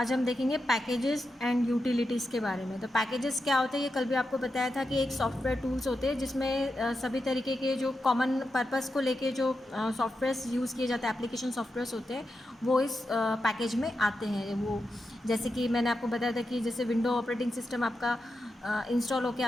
हम देखेंगे पैकेजेस एंड यूटिलिटीज़ के बारे में। तो पैकेजेस क्या होते हैं ये कल भी आपको बताया था कि एक सॉफ्टवेयर टूल्स होते हैं जिसमें सभी तरीके के जो कॉमन पर्पस को लेके जो सॉफ्टवेयर्स यूज़ किए जाते हैं, एप्लीकेशन सॉफ्टवेयर्स होते हैं, वो इस पैकेज में आते हैं। वो जैसे कि मैंने आपको बताया था कि जैसे विंडो ऑपरेटिंग सिस्टम आपका इंस्टॉल होकर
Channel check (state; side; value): normal; both; correlation 0.88